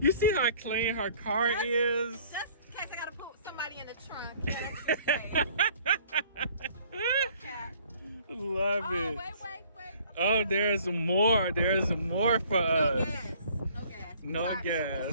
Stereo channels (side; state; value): both; inverted; correlation -0.56